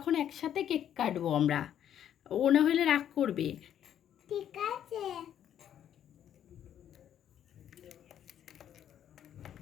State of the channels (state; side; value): quieter; right; 10.1 dB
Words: একসাথে কেক কাটবো আমরা। ও না হলে রাগ করবে। ঠিক আছে।